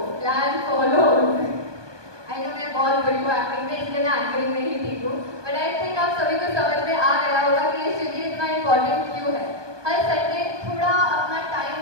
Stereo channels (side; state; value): left; late; 1.2 ms